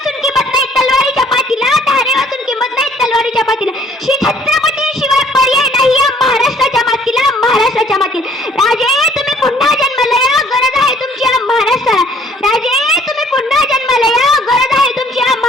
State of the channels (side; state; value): both; normal; correlation 0.59